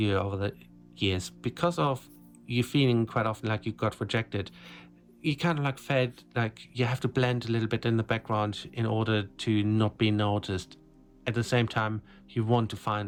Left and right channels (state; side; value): identical; both; correlation 1.00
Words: over the years, because of you feeling quite often like you got rejected, you kind of like felt like you have to blend a little bit in the background in order to not be noticed. At the same time, you want to